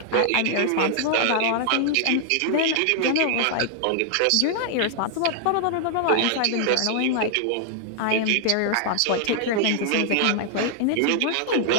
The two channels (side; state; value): both; different; correlation -0.01